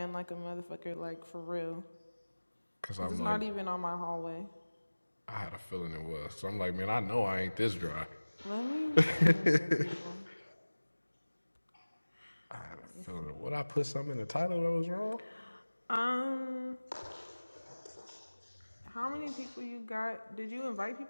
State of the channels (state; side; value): inverted; both; correlation -1.00